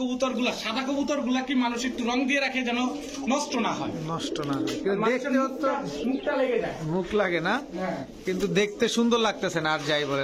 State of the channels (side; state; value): both; identical; correlation 1.00